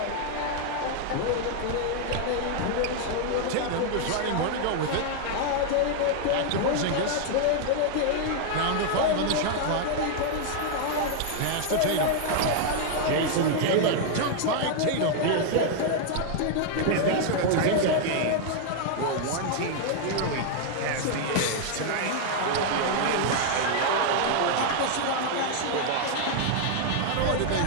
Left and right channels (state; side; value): different; both; correlation 0.00